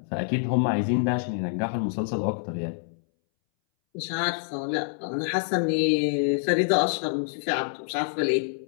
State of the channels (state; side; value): silent; right; 61 dB below the other